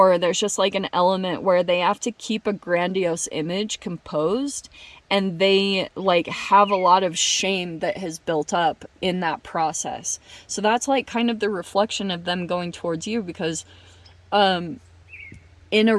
there's just, like, an element where they have to keep a grandiose image composed, and they, like, have a lot of shame that has built up in that process. So that's, like, kind of the reflection of them going towards you, because in a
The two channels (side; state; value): both; identical; correlation 1.00